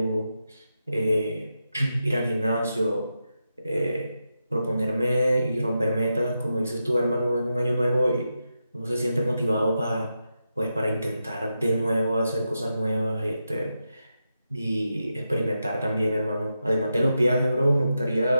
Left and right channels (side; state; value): both; inverted; correlation -0.87